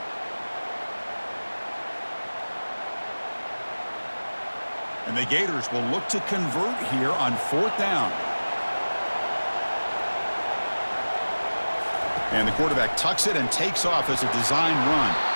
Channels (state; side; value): inverted; both; correlation -1.00